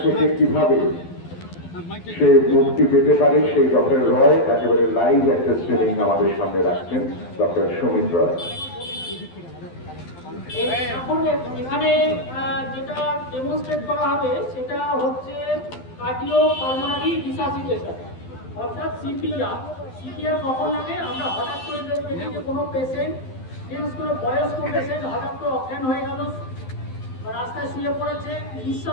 থেকে কিভাবে সে মুক্তি পেতে পারে সেই ডক্টর রয় একেবারে লাইভ একটা ট্রেনিং আমাদের সামনে রাখছেন ডক্টর সুমিত রয়। এখন এখানে যেটা ডেমনস্ট্রেট করা হবে সেটা হচ্ছে কার্ডিও পালমোনারি রিসাসিটেশন অর্থাৎ সিপিআর। সিপিআর কখন লাগে? আমরা হঠাৎ করে দেখি যে কোনো পেশেন্ট, বিশেষ করে বয়স্ক পেশেন্ট হঠাৎ করে অজ্ঞান হয়ে গেল, রাস্তায় শুয়ে পড়েছে,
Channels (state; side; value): late; right; 12 ms